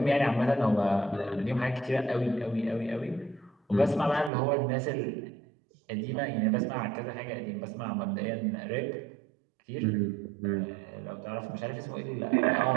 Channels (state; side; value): drops out; left; at 4.3 s